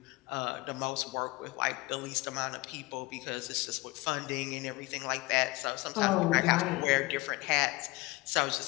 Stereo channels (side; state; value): right; quieter; 22.4 dB